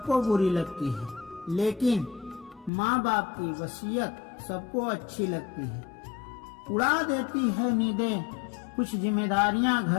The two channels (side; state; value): right; drops out; at 2.7 s